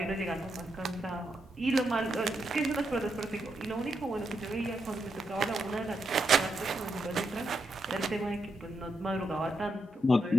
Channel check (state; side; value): normal; both; correlation 0.82